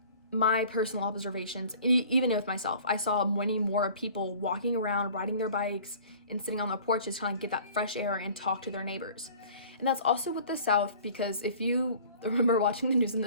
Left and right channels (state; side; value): inverted; both; correlation -0.47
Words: my personal observations, even with myself, I saw many more people walking around, riding their bikes, and sitting on the porches trying to get that fresh air and talk to their neighbors. And that's also with the South, because if you remember watching the news in